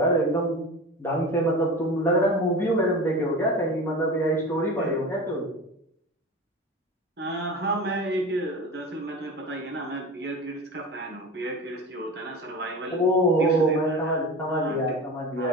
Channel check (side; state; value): both; normal; correlation 0.31